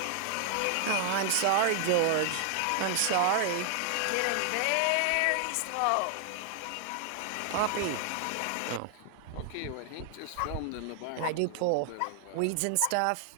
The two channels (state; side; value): different; both; correlation 0.00